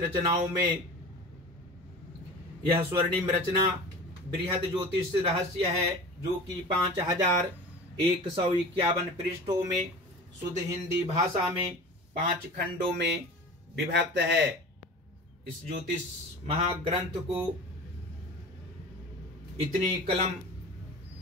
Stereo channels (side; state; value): both; normal; correlation 0.36